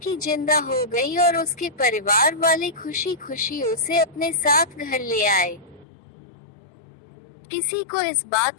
जिंदा हो गई और उसके परिवार वाले खुशी खुशी उसे अपने साथ घर ले आए। किसी को इस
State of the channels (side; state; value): right; drops out; at 5.9 s